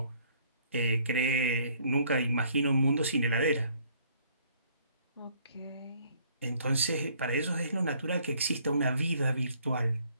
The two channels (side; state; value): both; inverted; correlation -0.62